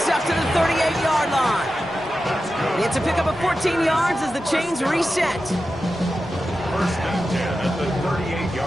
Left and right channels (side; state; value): both; normal; correlation 0.92